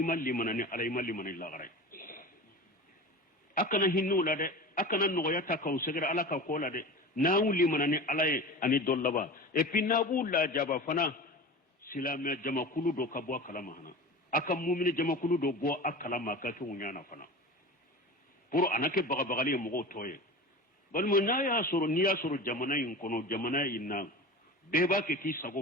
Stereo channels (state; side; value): normal; both; correlation 0.32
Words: limanani ala imal limanani lagaray akana hinnu la de akana nogoya ta ka usegara ala ka ko la de na wuli manani ala ani dollaba et puis na la jaba fana silama jamakulu do ka bo kalama hana aka mu'mini jamakulu do bo akala maka to nyana fana pour anake bagabagali mugo toye bal mo na ya soro ni ya soro jamana yin kono jamana inna be ba ke ki sago